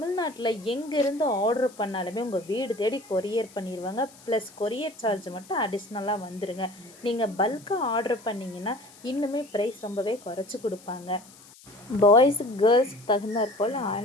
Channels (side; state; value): left; noise; hiss, 23 dB below the sound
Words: எங்கேருந்து ஆர்டர் பண்ணாலுமே உங்கள் வீடு தேடி கொரியர் பண்ணிடுவாங்க. ப்ளஸ் கொரியர் சார்ஜ் மட்டும் அடிஷ்னலாக வந்துடுங்க. நீங்கள் பல்காக ஆர்டர் பண்ணிங்கன்னா இன்னுமே ப்ரைஸ் ரொம்பவே குறைச்சி கொடுப்பாங்க. பாய்ஸு கேர்ள்ஸுக்கு தகுந்தாற் போல்